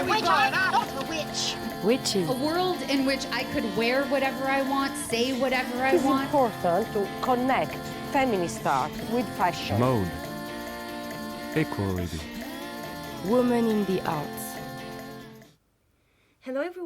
The witch. Witches. A world in which I could wear whatever I want, say whatever I It's want. important to connect feminist art with fashion. Mode. Equality. Women in the Arts. Hello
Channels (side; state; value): both; identical; correlation 1.00